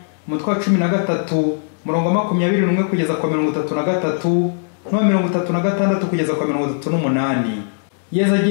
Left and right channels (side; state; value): right; silent; digital silence